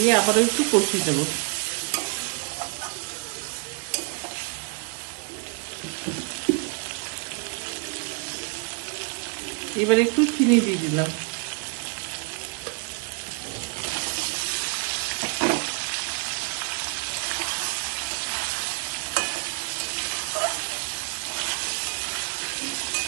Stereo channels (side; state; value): left; quieter; 35.6 dB